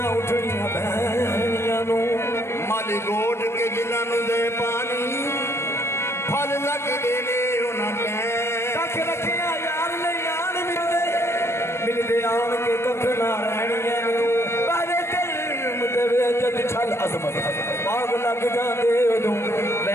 ਉੱਠਣੀਆਂ ਬਹਿਣੀਆਂ ਨੂੰ ਮਾਲੀ ਗੋਡ ਕੇ ਜਿਨ੍ਹਾਂ ਨੂੰ ਦੇ ਪਾਣੀ ਫਲ ਲੱਗਦੇ ਨੇ ਉਹਨਾਂ ਕਹਿ ਕੱਖ ਰੱਖਿਆ ਯਾਰ ਨਹੀਂ ਆਣ ਮਿਲਦੇ ਆਣ ਕੇ ਕੱਖ ਨਾ ਰਹਿਣੀਆਂ ਨੂੰ ਬਾਰੇ ਦਿਲ ਦੇ ਵਿੱਚ ਛਲ ਅਜ਼ਮਤ ਬਾਗ ਲੱਗ ਜਾਂਦੇ ਉਦੋਂ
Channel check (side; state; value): right; late; 0.13 ms